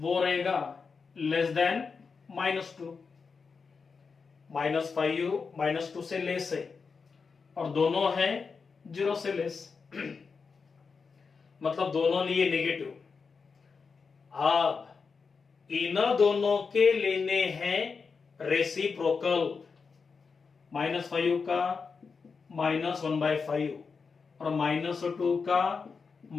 रहेगा लेस देन -2, -5 -2 से लेस है और दोनों है 0 से लेस, मतलब दोनों लिए नेगेटिव। अब इन दोनों के लेने हैं रेसिप्रोकल, -5 का -1/5 और -2 का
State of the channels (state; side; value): quieter; right; 5.1 dB